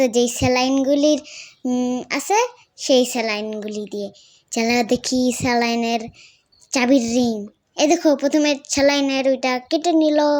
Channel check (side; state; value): both; identical; correlation 1.00